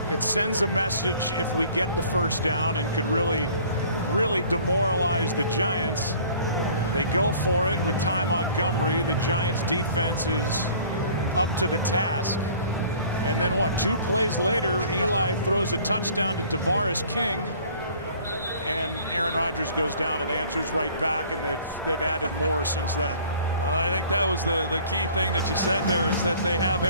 It sends a message if we get the 1st down and could really demoralize the Giants. They go for it with Ty Montgomery. The Giants defense is up to the task. And then what, 2 plays later, Eli throws a touchdown to Tavares King. And Aaron Rodgers goes down and answers right back, and they've added more since then. I think that was the key thing that you said there, is that they have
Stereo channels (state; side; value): inverted; both; correlation -0.51